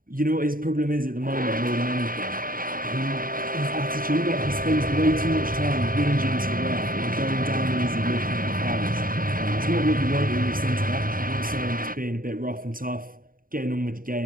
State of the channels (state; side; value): late; left; 0.41 ms